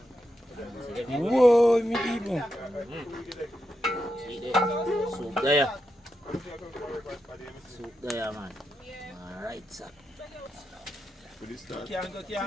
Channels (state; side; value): normal; both; correlation 0.86